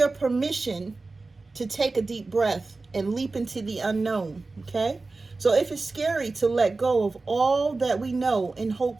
permission to take a deep breath and leap into the unknown. Okay? So if it's scary to let go of all that we know and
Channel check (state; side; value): quieter; left; 3.6 dB